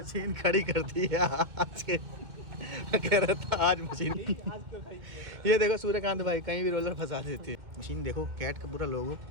खड़ी कर दी है आज के कह रहा था आज मशीन ये देखो सूर्यकांत भाई कहीं भी रोलर फंसा देती है। मशीन देखो कैट का पूरा लोगो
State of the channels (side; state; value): left; late; 2.1 ms